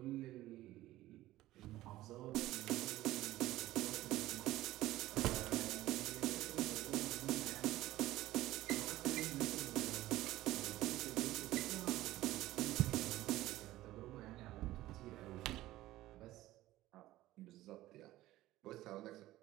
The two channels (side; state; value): left; quieter; 16.0 dB